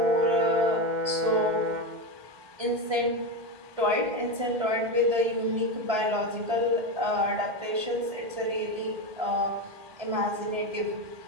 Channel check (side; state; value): left; late; 1.7 ms